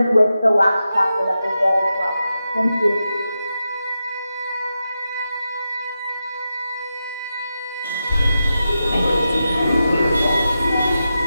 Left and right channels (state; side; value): inverted; both; correlation -0.89